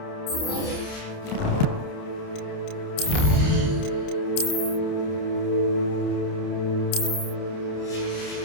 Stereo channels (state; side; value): late; right; 29 ms